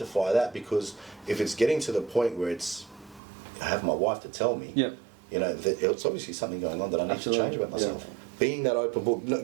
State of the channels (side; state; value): left; drops out; at 3.2 s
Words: that, because if it's getting to the point where I have my wife to tell me, Yep. that it's obviously something going on that I need Absolutely. to change about myself. being that open book. No,